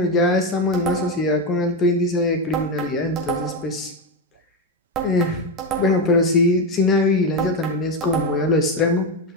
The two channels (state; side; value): normal; both; correlation 0.10